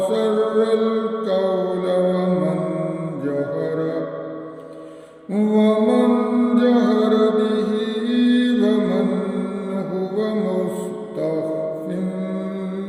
القول ومن جهر به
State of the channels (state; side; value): identical; both; correlation 1.00